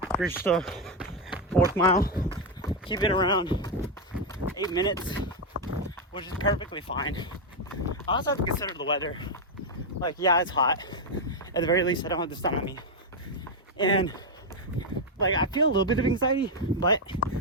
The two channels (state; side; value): normal; both; correlation 0.03